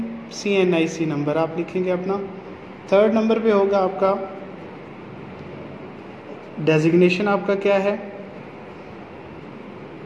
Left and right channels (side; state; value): both; identical; correlation 1.00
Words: CNIC नंबर आप लिखेंगे अपना। थर्ड नंबर पे होगा आपका डेजिग्नेशन आपका क्या है।